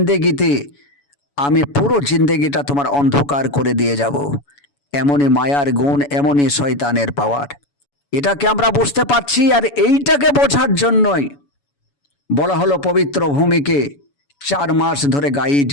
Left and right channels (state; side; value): late; right; 7.0 ms